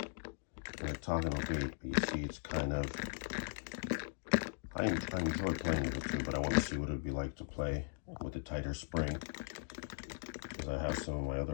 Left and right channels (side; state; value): right; silent; digital silence